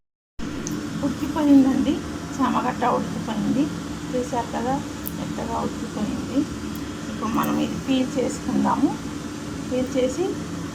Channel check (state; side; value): identical; both; correlation 1.00